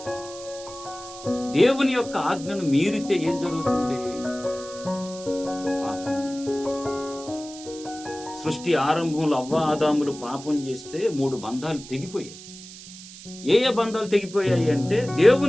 దేవుని యొక్క ఆజ్ఞను మీరితే ఏం జరుగుతుంది? పాపం. సృష్టి ఆరంభంలో అవ్వ ఆదాములు పాపం చేస్తే 3 బంధాలు తెగిపోయాయి. ఏ బంధాలు తెగిపోయాయి అంటే,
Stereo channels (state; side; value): noise; right; hiss, 15 dB below the sound